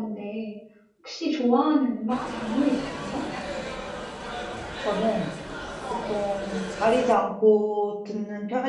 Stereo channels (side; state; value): both; identical; correlation 1.00